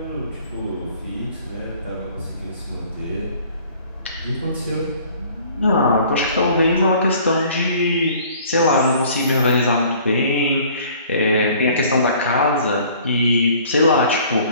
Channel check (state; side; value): inverted; both; correlation -0.52